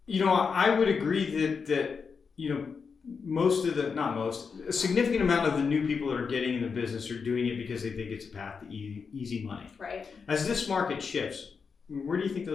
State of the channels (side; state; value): right; quieter; 5.5 dB